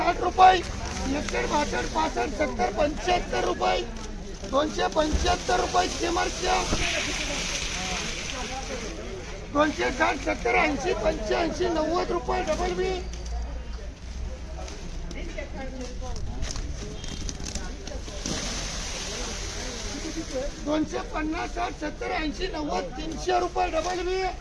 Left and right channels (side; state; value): both; identical; correlation 1.00